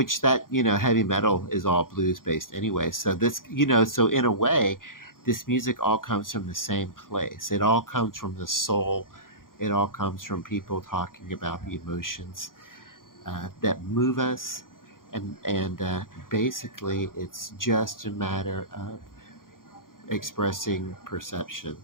that heavy metal is all blues based anyway. So this so in a way, this music all comes from the same place. It all comes from the soul. It all comes from people talking about the emotions that move us, and basically, it's just a matter of expressing perception.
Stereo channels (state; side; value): late; right; 0.90 ms